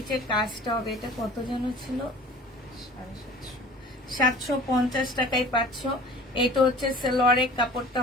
কাজটা হবে, এটা কত যেন ছিল, 750 টাকায় পাচ্ছ। এটা হচ্ছে সালোয়ারের কাপড়টা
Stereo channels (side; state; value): both; normal; correlation 0.45